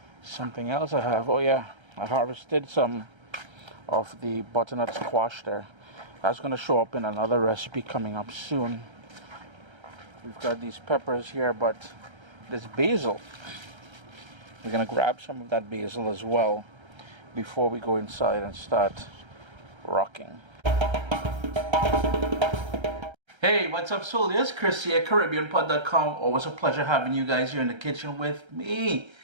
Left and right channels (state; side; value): late; left; 1.3 ms